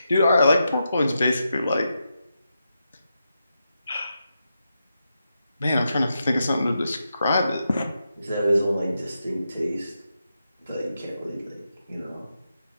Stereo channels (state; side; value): inverted; both; correlation -0.86